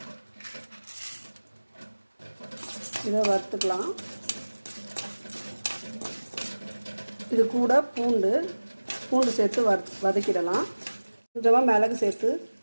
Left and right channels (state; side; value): inverted; both; correlation -1.00